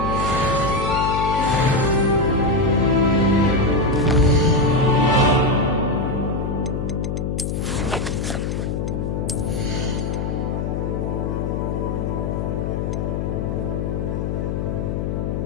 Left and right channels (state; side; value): noise; left; hum, 1 dB below the sound